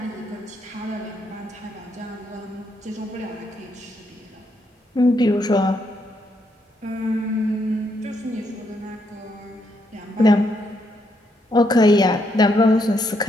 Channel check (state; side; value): normal; both; correlation 0.76